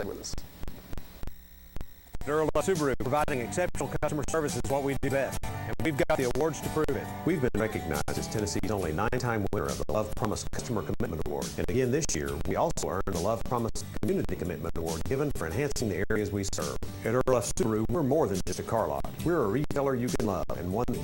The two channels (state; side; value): identical; both; correlation 1.00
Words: with us. Earl Subaru, providing exceptional customer service is what we do best, and we've got the awards to prove it. We've been recognized as Tennessee's only 9-time winner of the Love Promise Customer Commitment Award. And again this year, we also earned the Love Promise Community Commitment Award, given for enhancing the areas we serve. At Earl Subaru, we're more than just a car lot. We're a retailer you can love, and one that